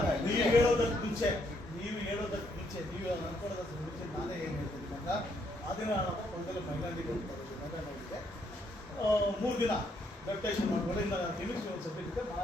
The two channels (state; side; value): normal; both; correlation 0.73